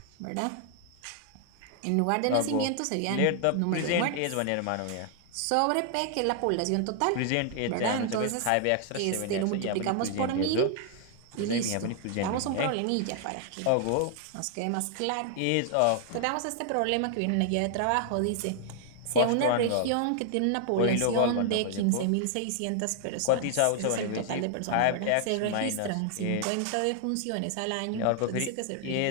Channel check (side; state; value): both; different; correlation 0.00